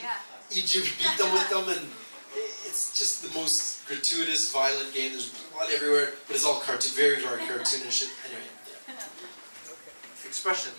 you beat them with them, and it's just the most gratuitous, violent game. There's blood everywhere, but it's all very, very cartoonish. Anyway, yeah. Expression.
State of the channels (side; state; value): both; inverted; correlation -1.00